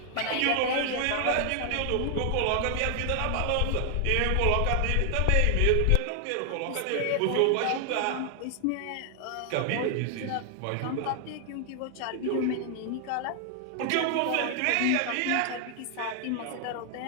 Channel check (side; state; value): both; different; correlation 0.00